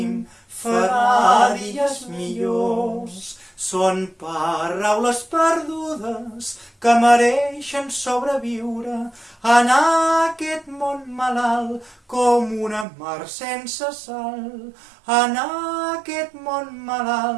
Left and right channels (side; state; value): left; drops out; at 12.9 s